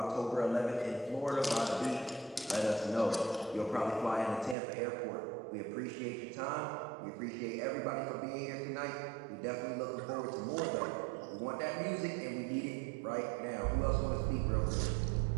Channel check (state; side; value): drops out; left; at 4.5 s